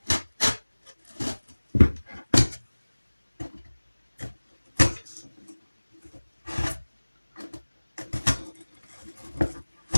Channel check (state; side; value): inverted; both; correlation -1.00